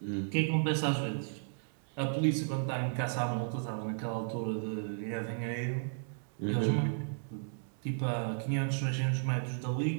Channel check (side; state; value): left; silent; digital silence